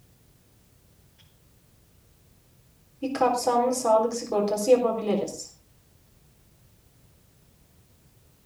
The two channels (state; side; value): identical; both; correlation 1.00